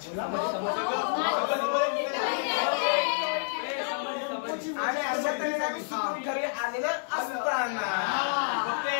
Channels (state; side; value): silent; right; 59 dB below the other